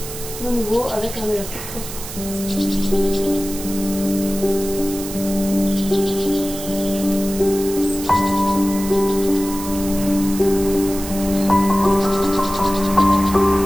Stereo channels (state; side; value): noise; right; hiss, 10 dB below the sound